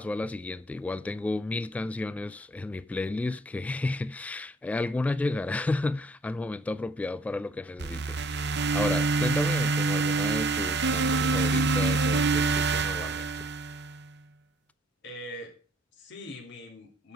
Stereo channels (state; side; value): normal; both; correlation 0.60